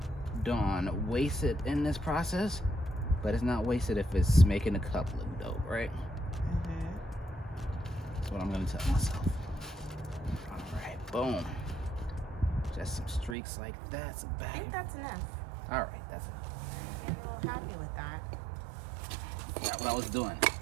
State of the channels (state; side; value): drops out; left; at 13.4 s